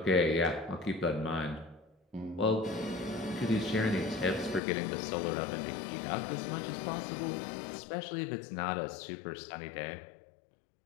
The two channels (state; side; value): drops out; right; at 4.6 s